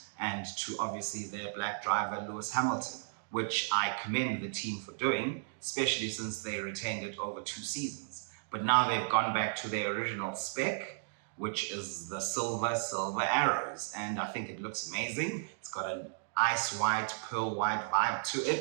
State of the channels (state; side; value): silent; left; digital silence